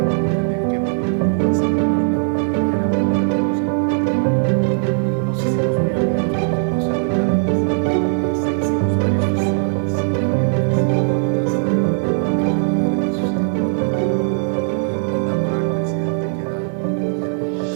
que venir grúas y guardar la obra. Era un verdadero serpentín. Y nos hicimos muy amigos porque con Sergio Cárdenas hicimos varios festivales. Había un festival fantástico de primavera que sucedía en Oaxaca, y inauguró el presidente, que era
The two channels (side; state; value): left; silent; 67 dB below the other